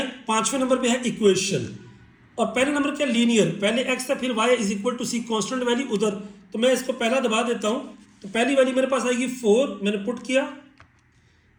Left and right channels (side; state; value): both; identical; correlation 1.00